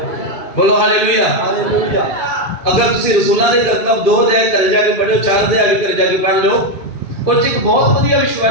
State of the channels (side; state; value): right; late; 2.4 ms